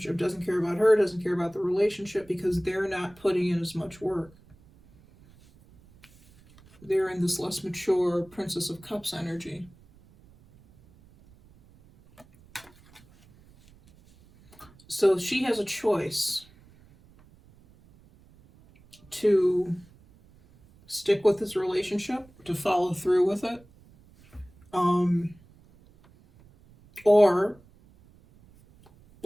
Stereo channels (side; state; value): right; noise; rumble, 27 dB below the sound